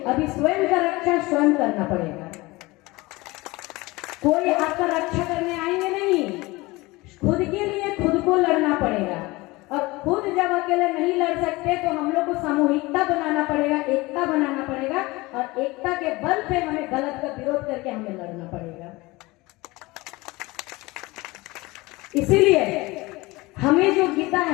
अभी स्वयं का रक्षा स्वयं करना पड़ेगा। कोई आपका रक्षा करने आएंगे नहीं, खुद के लिए खुद को लड़ना पड़ेगा। और खुद जब अकेले नहीं लड़ सकते तो हम लोग को सामूहिकता बनाना पड़ेगा, एकता बनाना पड़ेगा, और एकता के बल पे हमें गलत का विरोध करके हमें लड़ना पड़ेगा। इसीलिए हमें जो गीता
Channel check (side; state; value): right; quieter; 21.9 dB